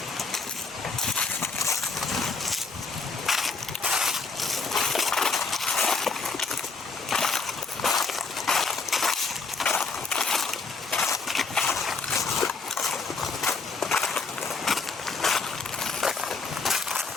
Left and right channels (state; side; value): quieter; right; 4.3 dB